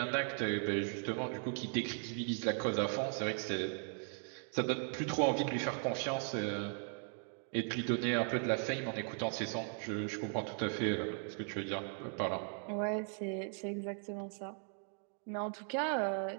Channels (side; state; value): left; silent; 52 dB below the other